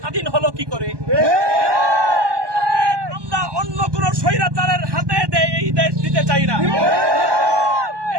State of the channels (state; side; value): late; left; 1.2 ms